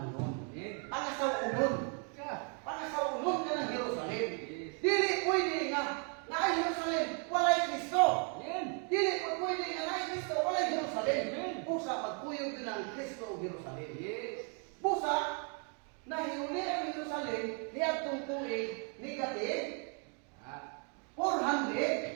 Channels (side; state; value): left; quieter; 39.9 dB